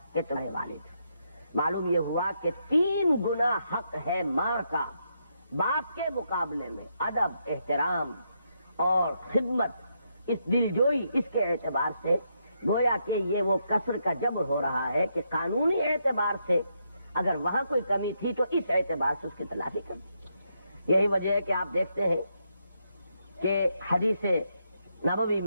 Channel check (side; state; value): both; inverted; correlation -0.79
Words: کہ تمہارے والد۔ معلوم یہ ہوا کہ 3 گنا حق ہے ماں کا باپ کے مقابلے میں، ادب، احترام اور خدمت، اس دلجوئی، اس کے اعتبار سے گویا کہ یہ وہ کسر کا جبر ہو رہا ہے کہ قانونی اعتبار سے اگر وہاں کوئی کمی تھی تو اس اعتبار سے اس کی تلافی کر دی۔ یہی وجہ ہے کہ آپ دیکھتے ہیں کہ حدیث نبوی